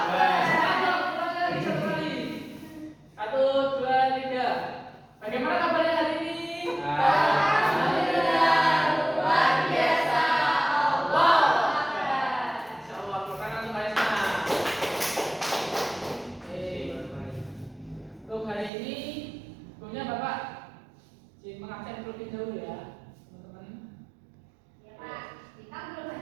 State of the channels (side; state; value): left; drops out; at 18.7 s